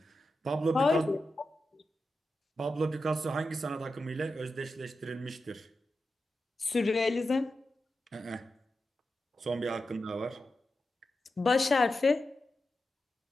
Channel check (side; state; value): both; normal; correlation 0.90